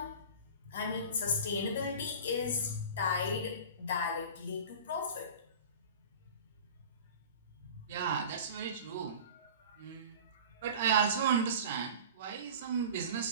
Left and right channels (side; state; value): both; inverted; correlation -0.37